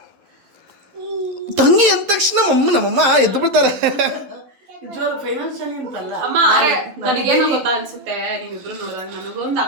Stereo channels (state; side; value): late; left; 11 ms